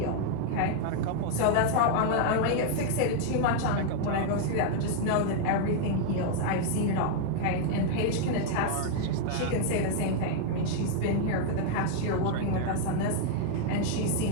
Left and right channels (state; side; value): different; both; correlation 0.00